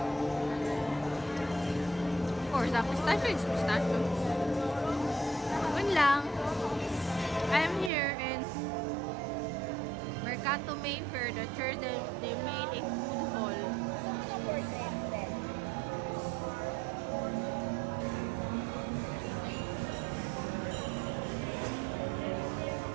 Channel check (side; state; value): left; drops out; at 7.9 s